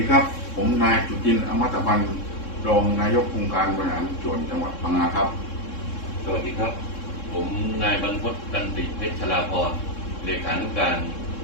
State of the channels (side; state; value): right; late; 3.6 ms